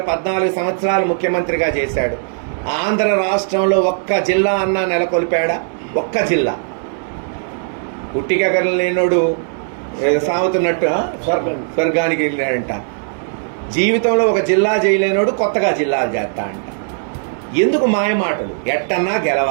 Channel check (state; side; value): silent; left; digital silence